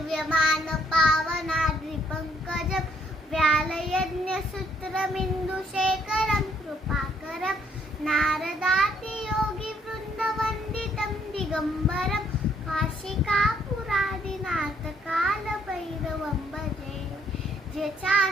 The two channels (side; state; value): both; normal; correlation 0.68